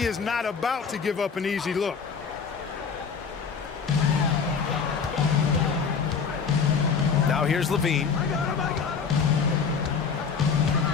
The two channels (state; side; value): quieter; right; 5.9 dB